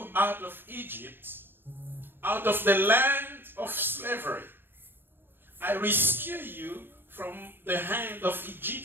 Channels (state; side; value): late; left; 0.10 ms